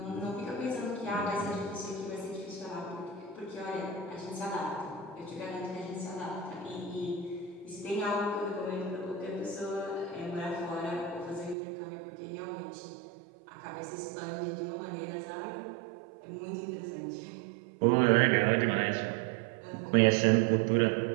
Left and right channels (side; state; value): left; drops out; at 11.6 s